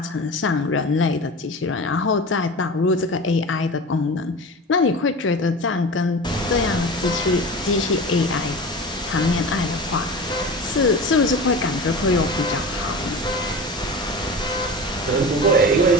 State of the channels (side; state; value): both; normal; correlation 0.32